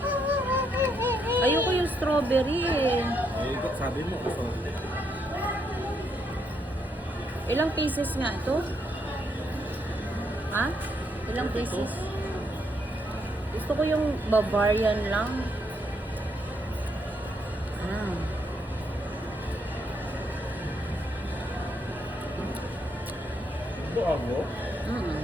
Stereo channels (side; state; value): both; normal; correlation 0.76